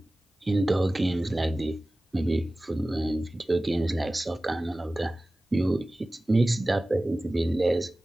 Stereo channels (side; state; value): both; normal; correlation 0.97